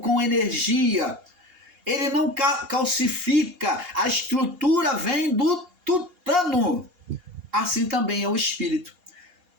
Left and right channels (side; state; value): left; late; 2.8 ms